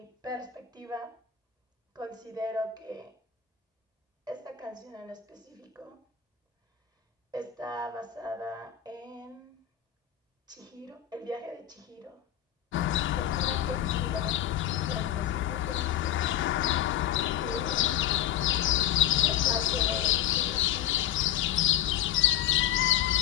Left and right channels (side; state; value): right; quieter; 11.1 dB